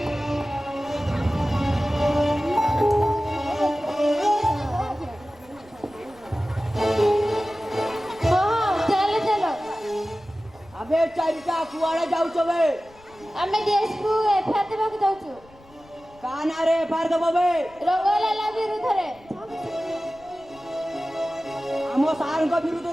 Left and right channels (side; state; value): left; noise; rumble, 26 dB below the sound